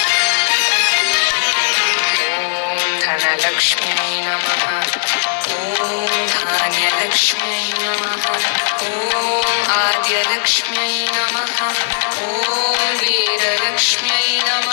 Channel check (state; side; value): silent; right; 55 dB below the other